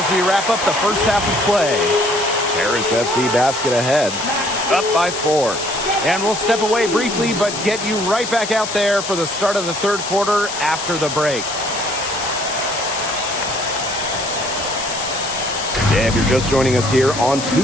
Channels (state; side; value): noise; left; hiss, 7 dB below the sound